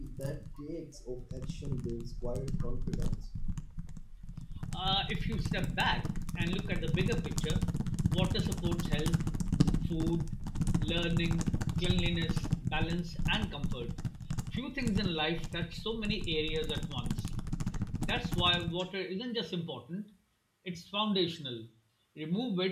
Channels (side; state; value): both; identical; correlation 1.00